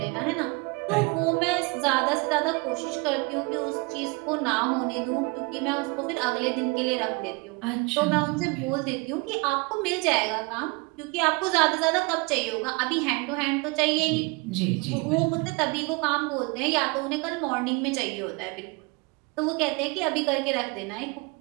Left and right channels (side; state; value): left; quieter; 27.6 dB